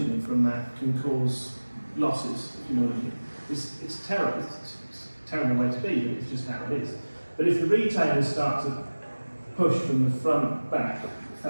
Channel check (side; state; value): both; inverted; correlation -1.00